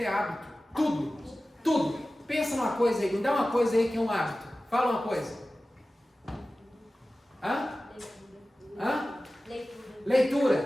é hábito. Tudo, tudo. Pensa numa coisa aí, me dá uma coisa aí que é um hábito. Fala uma coisa. Hã?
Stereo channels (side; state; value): both; normal; correlation 0.96